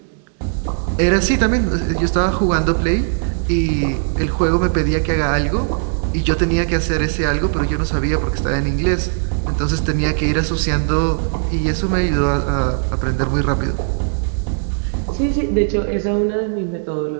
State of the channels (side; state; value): left; silent; digital silence